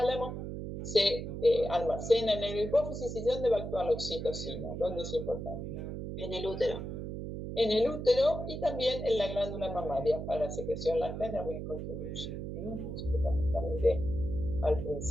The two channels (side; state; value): right; noise; hum, 6 dB below the sound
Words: se almacena en el hipófisis. ¿Y dónde va a actuar la oxitocina? ¿Dónde es importante? En el útero. En el útero y también en la glándula mamaria para la secreción láctea también contribuye. Fundamentalmente al